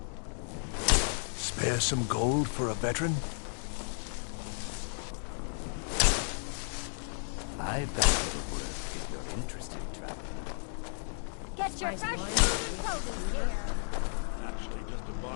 Spare some gold for a veteran? I bet it'll work if you're interested in traveling. Get your fresh food and clothing here. Actually, just a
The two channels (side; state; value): right; silent; digital silence